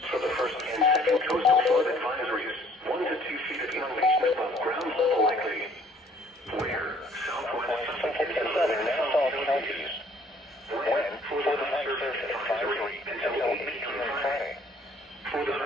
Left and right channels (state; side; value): normal; both; correlation 0.58